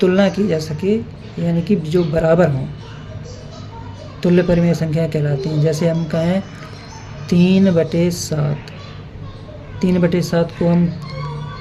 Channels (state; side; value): identical; both; correlation 1.00